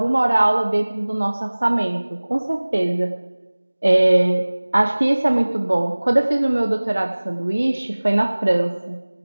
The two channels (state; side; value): inverted; both; correlation -1.00